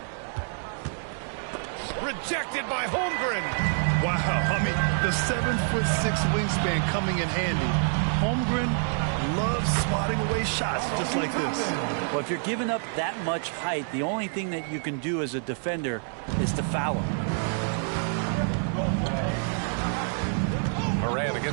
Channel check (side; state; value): left; silent; 56 dB below the other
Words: Rejected by Holmgren. Wow, I mean, the 7'6" wingspan coming in handy. Holmgren loves swatting away shots just like this. Well, if you're giving up that much height, the only thing that you can do as a defender is to foul him. Morant